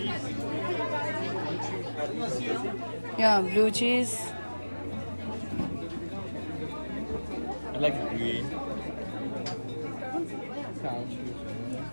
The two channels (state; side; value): inverted; both; correlation -1.00